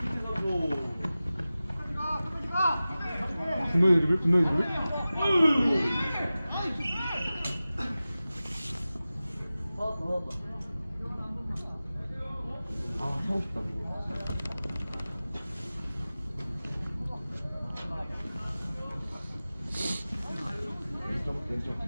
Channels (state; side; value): inverted; both; correlation -0.96